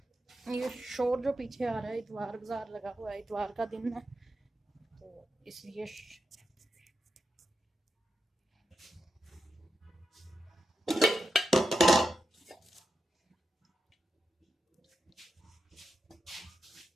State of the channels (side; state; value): both; normal; correlation 0.87